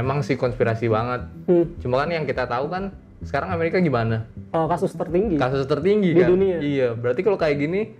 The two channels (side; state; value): both; identical; correlation 1.00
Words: emang sih konspirasi banget. Cuma kan yang kita tahu kan sekarang Amerika gimana? Oh, kasus tertinggi Di kan? Dunia. Iya, berarti kalau kayak gini